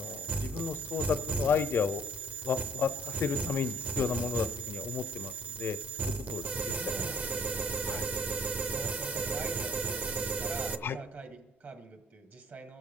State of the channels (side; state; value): both; normal; correlation 0.60